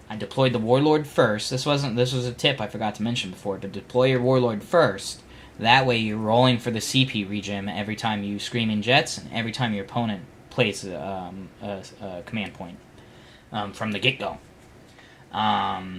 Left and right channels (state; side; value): identical; both; correlation 1.00